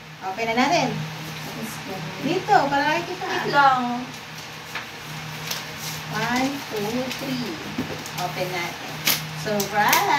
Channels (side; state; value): both; identical; correlation 1.00